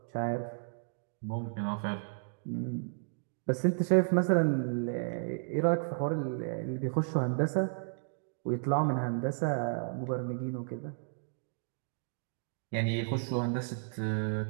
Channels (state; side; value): silent; left; digital silence